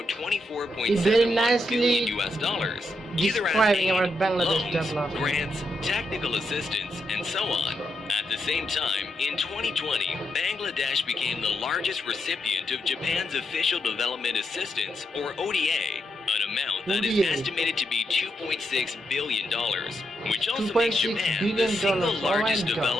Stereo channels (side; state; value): both; normal; correlation 0.83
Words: $24.71 billion US dollars, either as aid, loans, grants, technical assistance, and so on. At the same time, in 2020, Bangladesh became the largest recipient of Japan's Official Development Assistance, or ODA, an amount that is estimated to be $2.6 billion, which also makes Japan the single largest